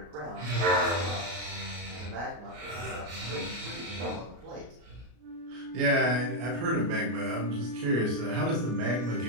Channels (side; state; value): left; late; 33 ms